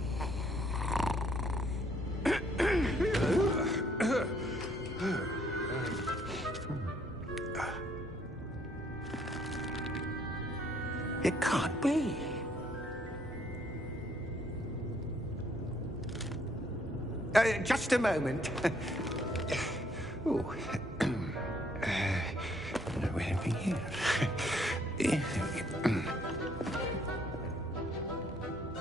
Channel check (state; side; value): normal; both; correlation 0.66